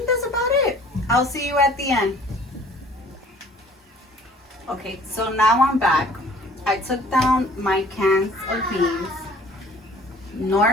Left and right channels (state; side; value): normal; both; correlation 0.52